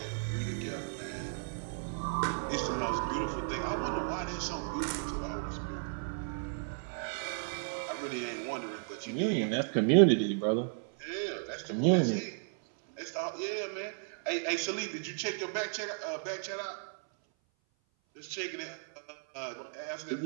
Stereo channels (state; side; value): silent; left; 55 dB below the other